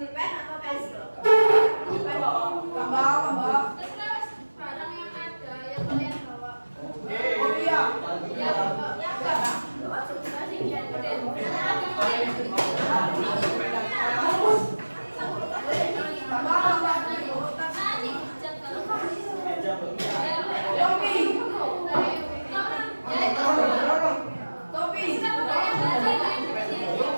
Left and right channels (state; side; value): inverted; both; correlation -1.00